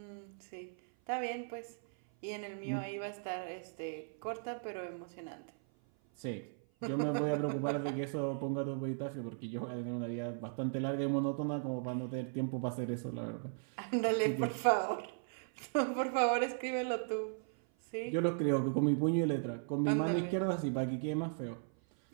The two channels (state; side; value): silent; left; 53 dB below the other